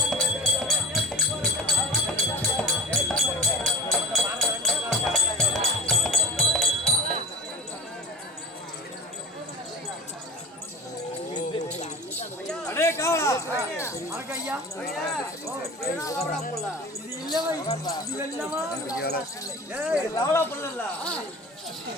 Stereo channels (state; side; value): normal; both; correlation 0.35